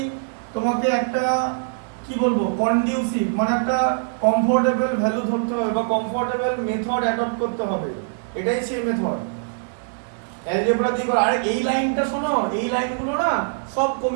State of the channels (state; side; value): silent; left; 62 dB below the other